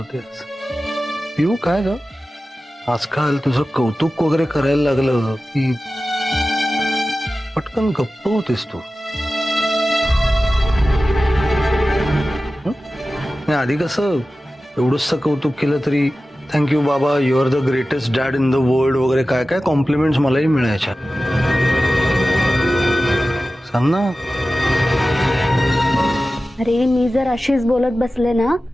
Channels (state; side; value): normal; both; correlation 0.95